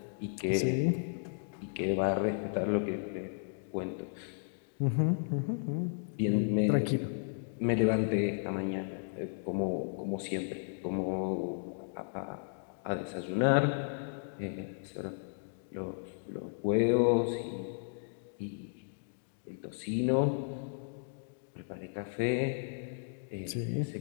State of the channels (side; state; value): right; silent; digital silence